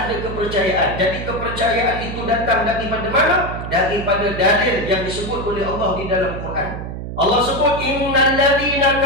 kepercayaan. Jadi kepercayaan itu datang daripada mana? Daripada dalil yang disebut oleh Allah di dalam Quran. Allah sebut innal ladzina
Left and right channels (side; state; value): right; noise; hum, 7 dB below the sound